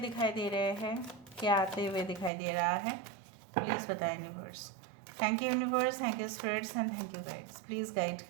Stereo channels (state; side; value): drops out; left; at 2.3 s